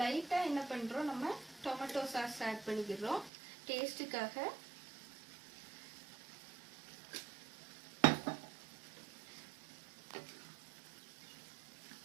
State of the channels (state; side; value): drops out; left; at 3.3 s